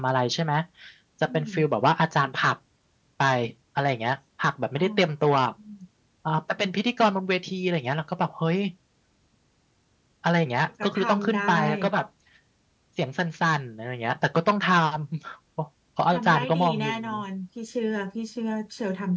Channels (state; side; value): identical; both; correlation 1.00